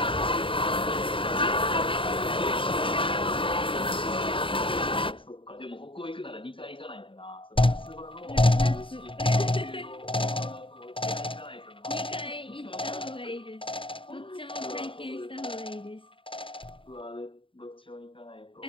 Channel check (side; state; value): right; late; 0.25 ms